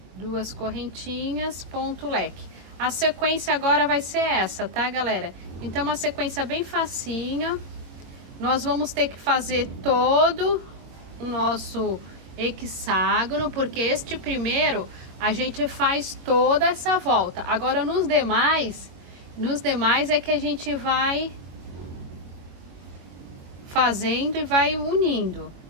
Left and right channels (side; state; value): left; late; 22 ms